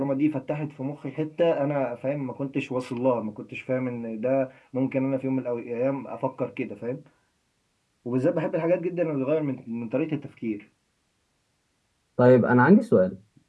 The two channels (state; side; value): identical; both; correlation 1.00